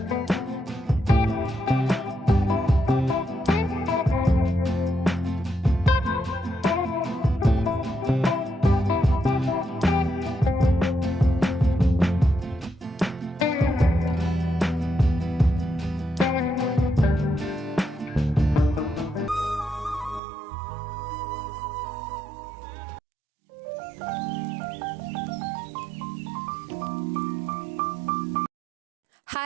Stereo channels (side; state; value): left; drops out; at 20.2 s